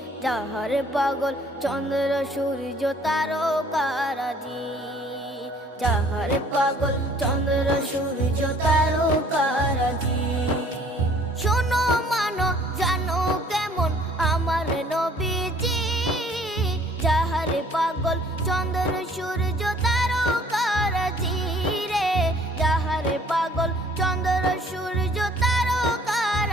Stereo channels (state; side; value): normal; both; correlation 0.57